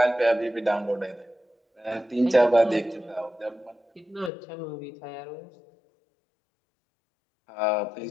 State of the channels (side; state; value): right; drops out; at 4.3 s